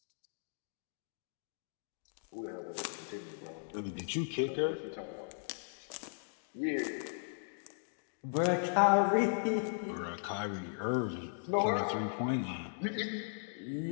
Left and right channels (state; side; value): silent; right; digital silence